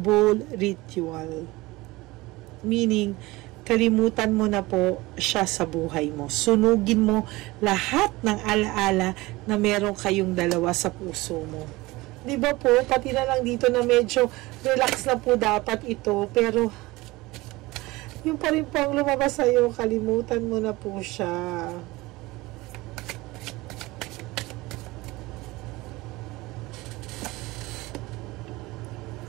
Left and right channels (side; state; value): left; quieter; 20.9 dB